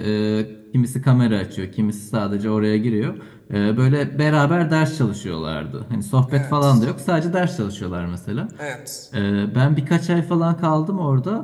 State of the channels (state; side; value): identical; both; correlation 1.00